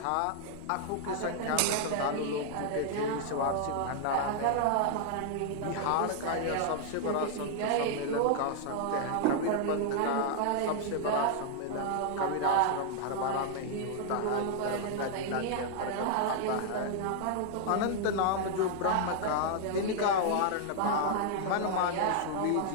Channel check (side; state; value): both; different; correlation 0.00